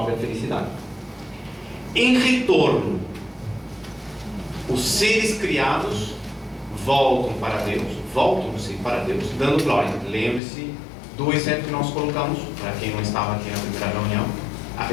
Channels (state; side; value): drops out; right; at 10.4 s